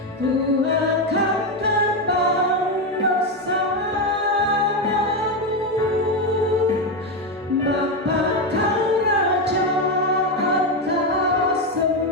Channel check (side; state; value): both; normal; correlation 0.10